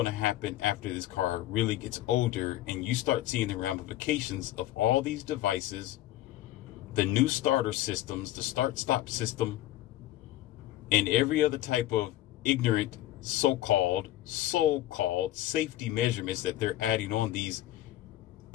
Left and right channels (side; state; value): right; quieter; 14.6 dB